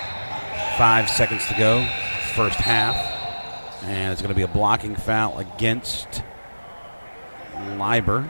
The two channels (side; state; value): both; inverted; correlation -1.00